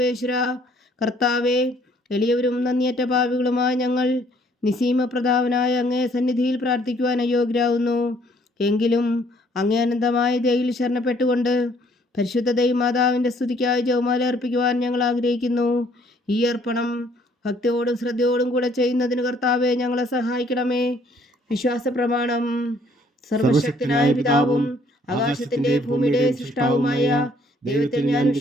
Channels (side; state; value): both; normal; correlation 0.63